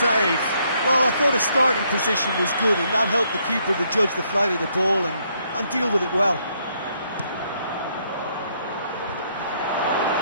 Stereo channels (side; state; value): both; inverted; correlation -0.72